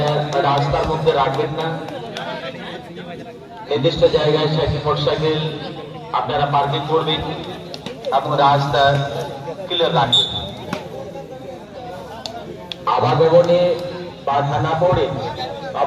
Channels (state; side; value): identical; both; correlation 1.00